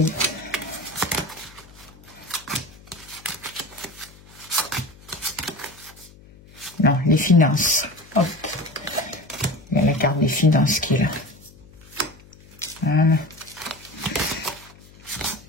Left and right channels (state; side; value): noise; left; hum, 23 dB below the sound